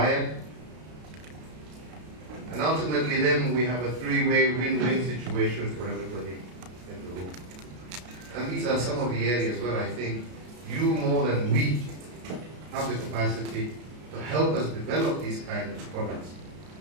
And ultimately then we have a three-way win-win situation for everybody in the room. And these are some of the areas where I think you more than we have the capacity to help us develop these kinds of products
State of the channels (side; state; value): left; late; 33 ms